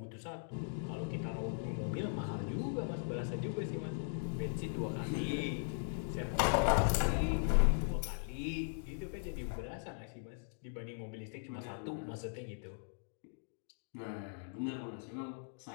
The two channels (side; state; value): right; silent; digital silence